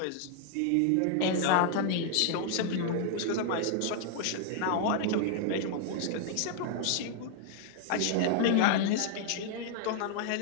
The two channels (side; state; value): both; different; correlation 0.00